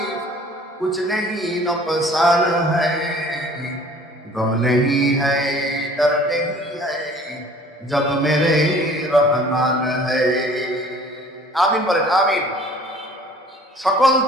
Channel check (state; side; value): normal; both; correlation 0.51